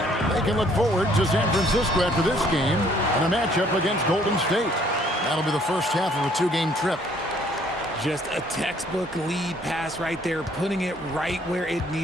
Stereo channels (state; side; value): normal; both; correlation 0.62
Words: They can look forward to San Francisco after this game and a matchup against Golden State. That'll be the first half of a 2-game trip. Just a textbook lead pass right there, putting it right where it